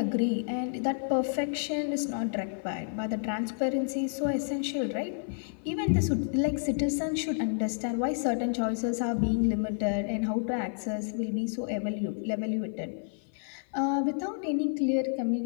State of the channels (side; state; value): right; silent; 55 dB below the other